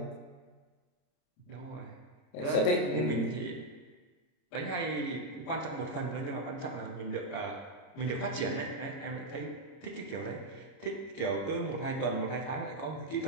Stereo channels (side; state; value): right; late; 30 ms